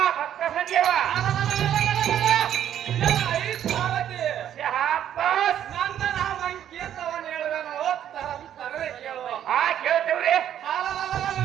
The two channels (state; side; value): quieter; left; 10.4 dB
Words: ಭಕ್ತ ಸಂಜೀವ ನನ್ನ ನಾಮಂಕೇತವನ್ನು ಹೇಳುವೆನು ತರವೇ ಕೇಳುವ ಕೇಳ್ತೇವ್ರಿ